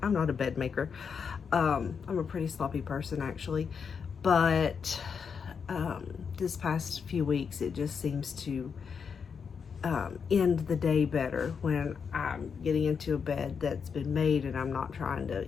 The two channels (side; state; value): right; quieter; 6.3 dB